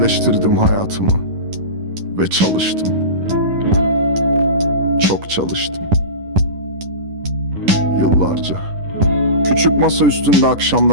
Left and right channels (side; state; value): left; late; 10 ms